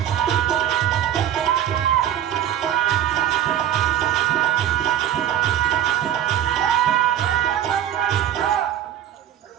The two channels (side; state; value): left; quieter; 10.9 dB